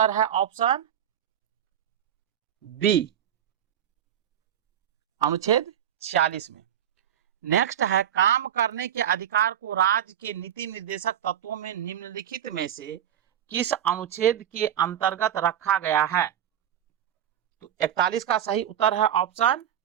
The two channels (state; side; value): quieter; left; 9.9 dB